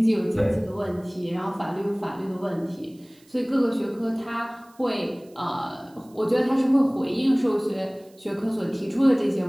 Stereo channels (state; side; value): noise; right; hiss, 30 dB below the sound